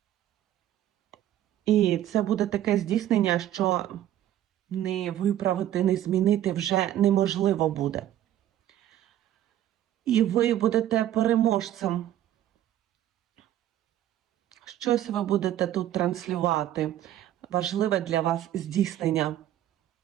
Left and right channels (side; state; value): left; quieter; 12.2 dB